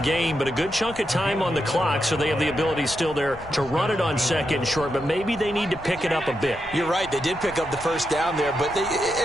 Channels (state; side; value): noise; left; rumble, 17 dB below the sound